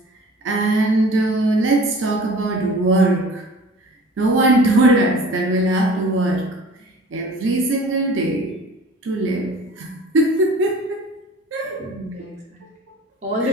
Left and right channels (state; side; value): normal; both; correlation 0.44